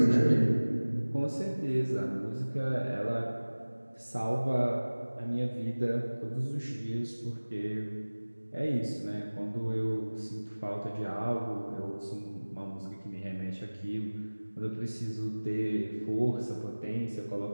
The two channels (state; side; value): inverted; both; correlation -1.00